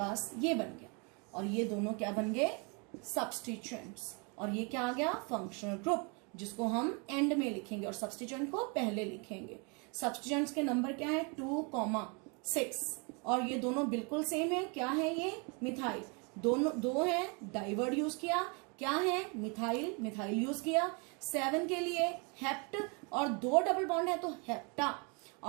ये बन गया, और ये दोनों क्या बन गए? सब्स्टिट्यूएंट्स। और ये क्या आ गया? फंक्शनल ग्रुप, जिसको हम एंड में लिखेंगे और सब्स्टिट्यूएंट को पहले लिखेंगे। सब्स्टिट्यूएंट्स के नंबर क्या है? 2,6। और ये दोनों बिल्कुल सेम है। क्या है ये? मिथाइल। दोनों 2 है, डाइवर्ड यूज किया। क्या है? मिथाइल, मिथाइल यूज किया। 7 के लिए हेप्ट, और 2 डबल बॉन्ड है तो हेप्टा।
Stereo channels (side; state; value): left; quieter; 33.3 dB